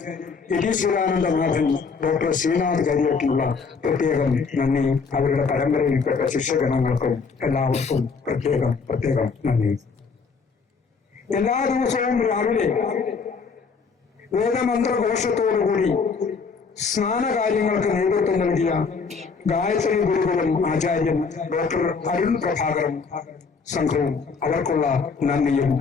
യതീശ്വരാനന്ദനാഥൻ ഡോക്ടർ ശ്രീനാഥ് കരിയട്ടിനുള്ള പ്രത്യേകം നന്ദി. അവരുടെ പരമ്പരയിൽപ്പെട്ട ശിഷ്യഗണങ്ങൾക്കും എല്ലാവർക്കും പ്രത്യേകം നന്ദി. എല്ലാ ദിവസവും രാവിലെ വേദമന്ത്രഘോഷത്തോടുകൂടി സ്നാനകാര്യങ്ങൾക്ക് നേതൃത്വം നൽകിയ ഗായത്രി ഗുരുകുലം ആചാര്യൻ ഡോക്ടർ അരുൺ പ്രഭാകരൻ സംഘവും അവർക്കുള്ള നന്ദിയും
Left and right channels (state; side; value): quieter; right; 5.1 dB